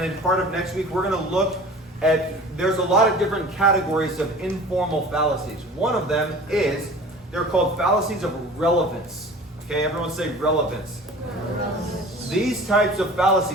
part of next week, we're going to look at, there's a lot of different categories of informal fallacies. One of them is, they're called fallacies of relevance. Okay, everyone say relevance. These types of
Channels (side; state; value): both; normal; correlation 0.42